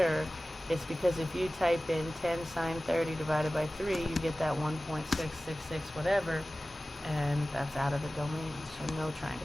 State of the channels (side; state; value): both; normal; correlation 0.97